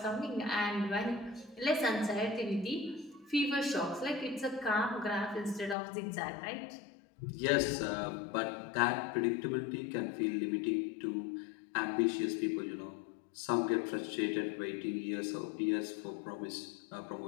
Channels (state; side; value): drops out; right; at 5.8 s